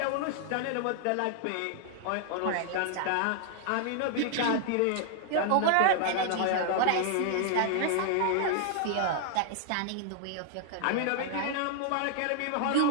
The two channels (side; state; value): both; different; correlation 0.00